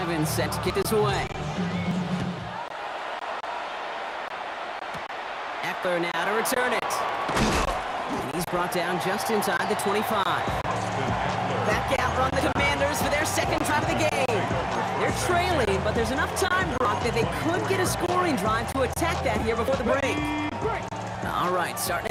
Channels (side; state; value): both; identical; correlation 1.00